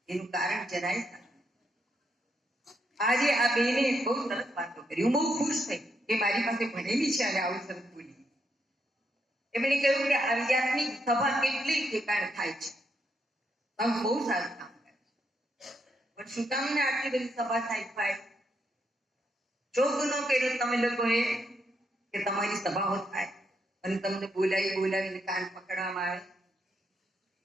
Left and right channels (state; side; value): normal; both; correlation 0.79